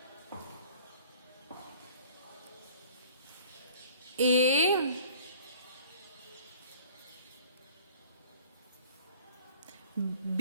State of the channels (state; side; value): inverted; both; correlation -0.50